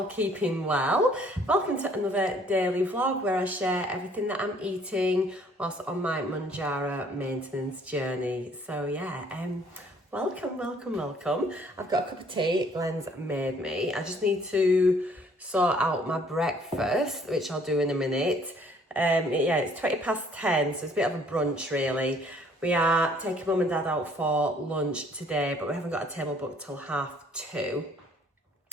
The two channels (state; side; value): normal; both; correlation 0.60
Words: keeping well. Welcome to another daily vlog where I share everything that I'm eating whilst on my Mounjaro maintenance journey. So yeah, welcome. I've got a cup of tea Glenn's made me. I just need to sort out my breakfast, which I'll do in a minute. Yeah, it's 20 past 10, so it's a bit of a brunch really. We are taking mum and dad out for lunch today, but we haven't got a table booked till 2:30.